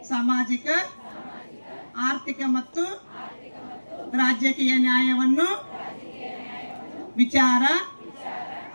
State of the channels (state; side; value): inverted; both; correlation -1.00